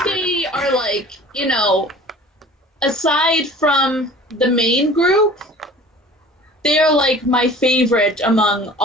are like, aside from the main group, they're like my favorite among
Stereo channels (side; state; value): both; normal; correlation 0.45